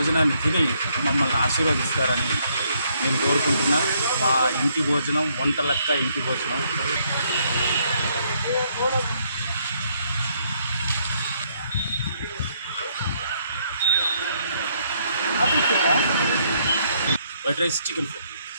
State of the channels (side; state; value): both; inverted; correlation -0.71